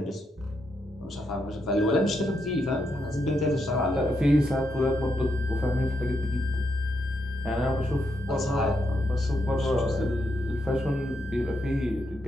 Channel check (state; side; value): normal; both; correlation 0.81